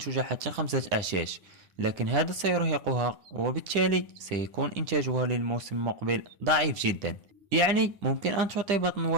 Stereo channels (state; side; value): late; left; 10 ms